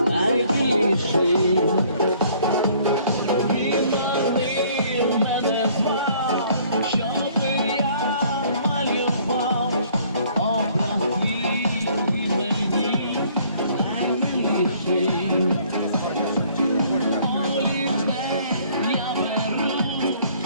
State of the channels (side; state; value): both; inverted; correlation -0.59